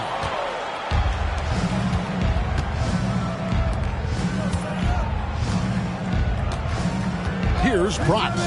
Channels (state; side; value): identical; both; correlation 1.00